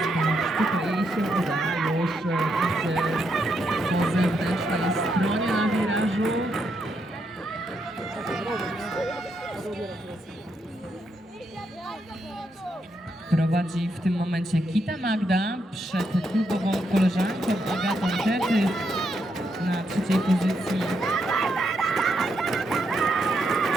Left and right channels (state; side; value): normal; both; correlation 0.79